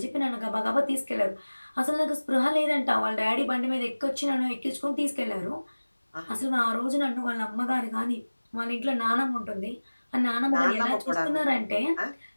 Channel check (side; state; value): both; inverted; correlation -1.00